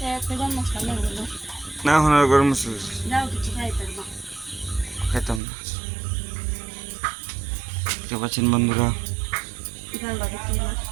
না হনার গরম মশলা খাইতাম না। দেখতে পাচ্ছেন বন্ধুরা,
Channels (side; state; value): left; drops out; at 5.4 s